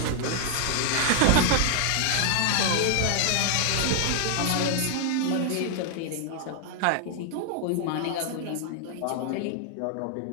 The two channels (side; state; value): both; different; correlation 0.00